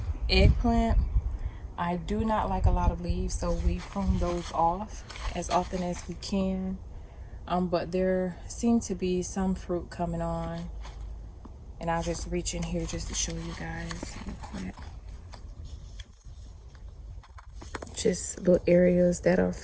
eggplant. I do not like a lot of leaves, so we prune those off as often as we can. But there seem to be some fruit coming on, and I'll just reach in here just to show you guys real quick. Just little areas that are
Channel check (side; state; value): both; identical; correlation 1.00